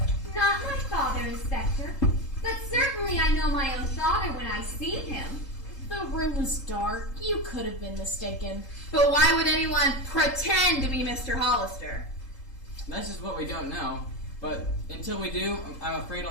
Not my father, Inspector. But certainly I know my own father when I see him. The room was dark. You could have been mistaken. But why would anyone pretend to be Mr. Hollister? That's just what we don't know. But until we do, I'm afraid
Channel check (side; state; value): right; late; 3.8 ms